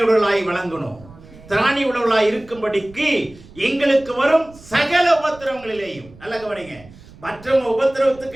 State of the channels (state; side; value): noise; right; rumble, 21 dB below the sound